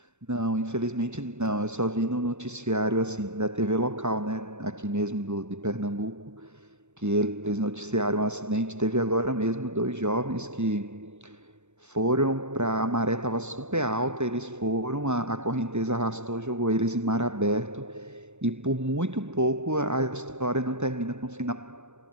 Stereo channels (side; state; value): left; late; 0.83 ms